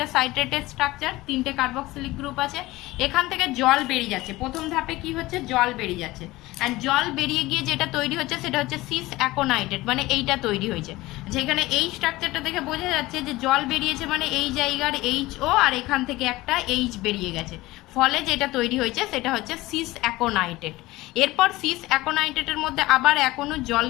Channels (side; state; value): right; quieter; 19.1 dB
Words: সাইট্রেটেড স্ট্রাকচার, 3টে কার্বক্সিলিক গ্রুপ আছে, এখান থেকে জল বেরিয়ে যাচ্ছে। প্রথম ধাপে কি হচ্ছে, জল বেরিয়ে যাচ্ছে, অ্যান্ড জল বেরিয়ে গিয়ে যেটা তৈরি হচ্ছে সেটা হচ্ছে সিস অ্যাকোনাইটেড, মানে এইটা তৈরি হয়েছে। যেখানে এই স্ট্রাকচারটা দেখে বোঝা যাচ্ছে যে জল বেরিয়েছে মানে এই জায়গার HO আর এখান থেকে একটা H বেরিয়ে গেছে, ফলে যেটা তৈরি হয়েছে সেটা হচ্ছে সিস অ্যাকোনাইটেড। এরপর সিস অ্যাকোনাইটেডের মধ্যে আবার এক অণু জল